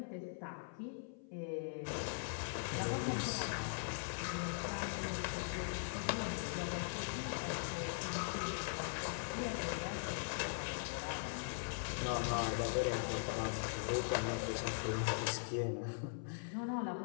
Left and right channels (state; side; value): silent; right; 50 dB below the other